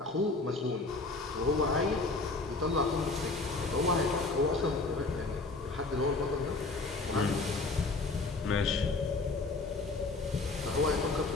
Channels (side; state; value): right; quieter; 3.5 dB